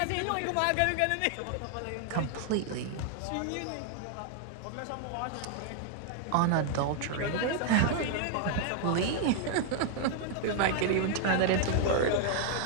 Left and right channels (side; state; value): both; different; correlation 0.00